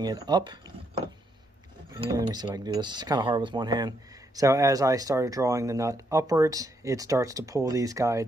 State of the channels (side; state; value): both; normal; correlation 0.77